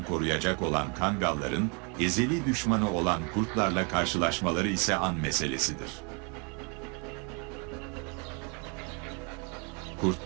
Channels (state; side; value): quieter; left; 34.3 dB